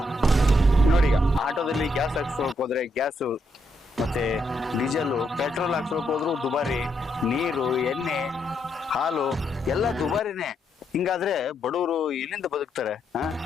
ನೋಡಿ ಈಗ ಆಟೋದಲ್ಲಿ ಗ್ಯಾಸ್ ಹಾಕ್ಸೋಕ್ ಹೋದ್ರೆ ಗ್ಯಾಸು, ಮತ್ತೆ ಡೀಸೆಲ್, ಪೆಟ್ರೋಲ್ ಹಾಕ್ಸೋಕ್ ಹೋದ್ರು ದುಬಾರಿ, ನೀರು, ಎಣ್ಣೆ, ಹಾಲು ಎಲ್ಲ ದುಬಾರಿನೇ. ಹಿಂಗಾದ್ರೆ ಬಡವರು ಎಲ್ಲಿಂದ ಬದುಕ್ತಾರೆ?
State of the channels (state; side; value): normal; both; correlation 0.78